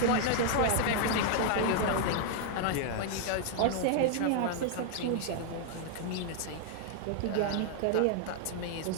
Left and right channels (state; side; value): different; both; correlation 0.00